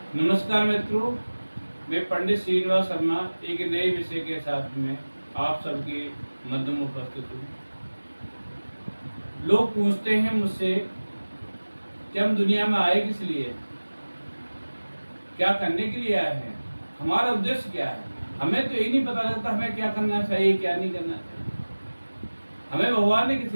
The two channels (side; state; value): both; inverted; correlation -1.00